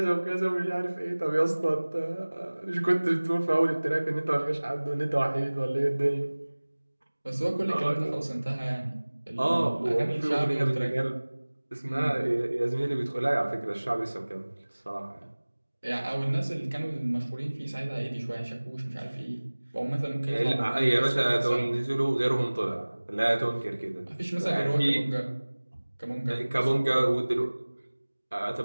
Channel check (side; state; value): both; inverted; correlation -1.00